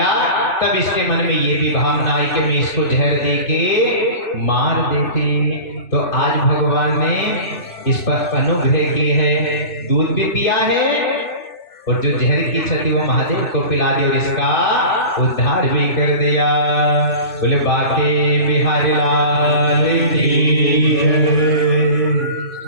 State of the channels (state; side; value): late; right; 3.0 ms